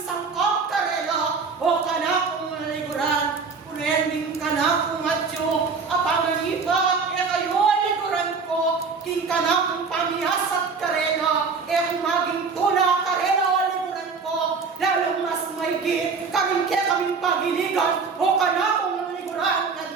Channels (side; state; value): left; quieter; 5.0 dB